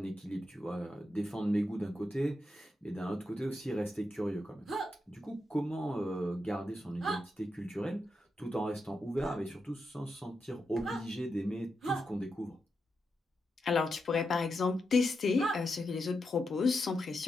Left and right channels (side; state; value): both; normal; correlation 0.86